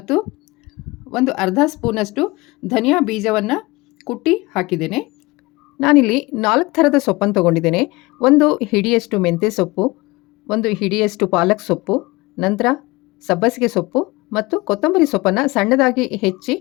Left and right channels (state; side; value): quieter; right; 22.3 dB